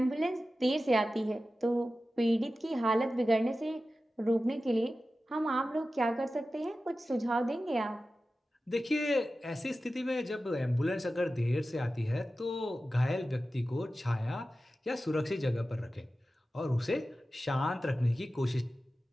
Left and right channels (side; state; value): both; normal; correlation 0.94